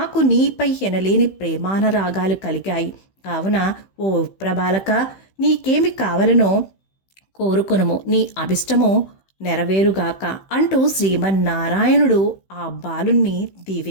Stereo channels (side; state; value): right; late; 15 ms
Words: నీపై ఎనలేని ప్రేమానరాగాలు కలిగాయి. కావున ఓ ప్రభాలక, నీకేమి కావలనో కోరుకొనుము, నీ అభిష్టము నెరవేరుగాక అంటూ శ్రీమన్నారాయణుడు ఆ బాలుణ్ణి